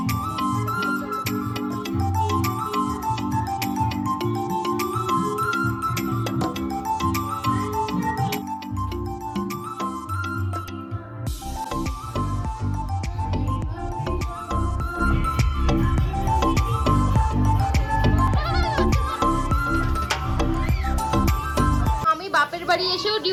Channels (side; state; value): both; identical; correlation 1.00